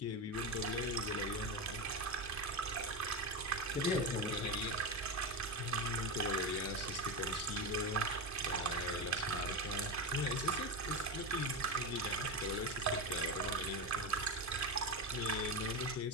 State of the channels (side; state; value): both; normal; correlation 0.16